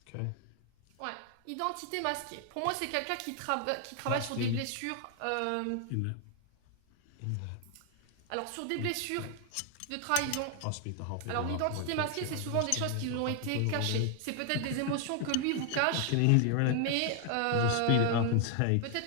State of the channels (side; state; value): both; different; correlation 0.00